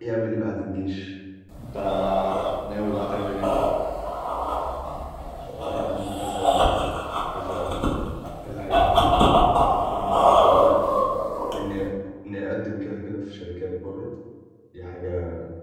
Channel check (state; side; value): identical; both; correlation 1.00